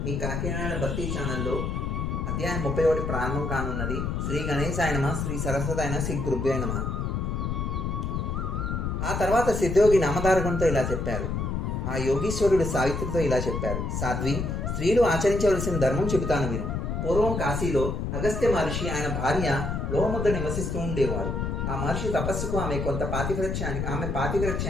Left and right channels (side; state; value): left; noise; rumble, 2 dB below the sound